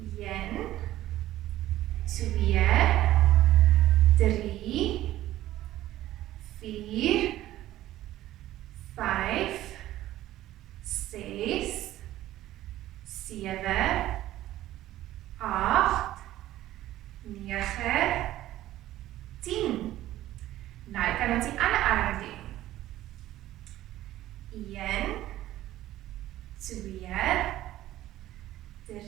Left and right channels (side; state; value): left; quieter; 14.5 dB